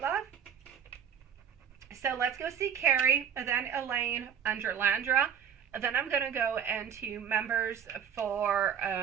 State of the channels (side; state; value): left; quieter; 8.2 dB